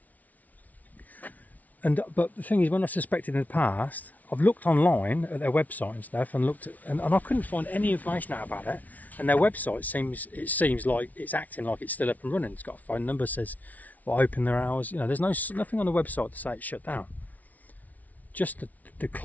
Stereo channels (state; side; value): late; right; 0.074 ms